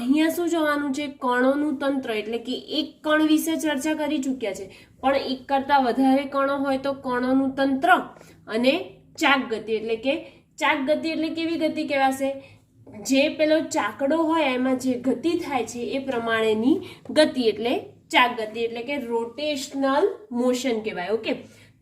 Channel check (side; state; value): both; identical; correlation 1.00